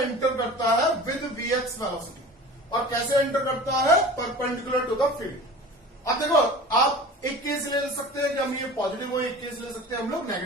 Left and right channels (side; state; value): both; normal; correlation 0.39